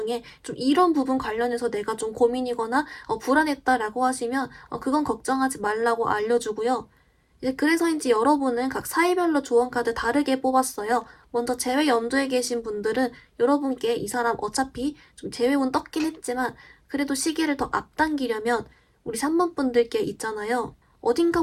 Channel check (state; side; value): identical; both; correlation 1.00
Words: 좀 이런 부분 관련해서 내가 좀 고민이거나 불안했다라고 하시면 그건 걱정하지 말라고 알려주고요. 이제 그래서인지 여러분은 각 사이별로 조언 카드 다르게 뽑았어요. 먼저 재회 염두에 계신 분들은 여러분께 이 사람 어차피 좀 재회운 떴긴 했지만 그래도 시기를 더 앞당기려면 우리 3번 분들께 있잖아요. 어딘가